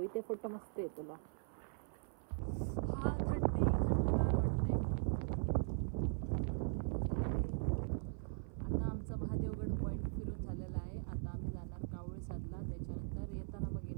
इथे फोटो मस्त आहे तुला. हा थंडगार वाटते. आता आमचा महादेवगड पॉइंट फिरून झालेला आहे. आता आम्ही जाणार कावळेसादला, त्याच्यानंतर येताना मग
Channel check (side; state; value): left; silent; 51 dB below the other